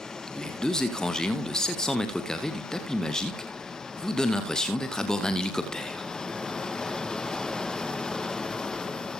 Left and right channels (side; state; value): both; normal; correlation 0.80